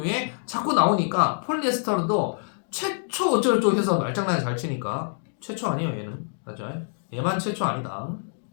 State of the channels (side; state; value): right; silent; digital silence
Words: 자꾸 나오니까 폴리에스터도 최초 어쩌고저쩌고 해서 말장난을 잘 치니까 최초 아니에요 얘는. 맞죠? 얘만 최초 아니다.